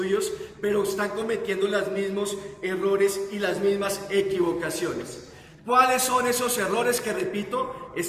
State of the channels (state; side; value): identical; both; correlation 1.00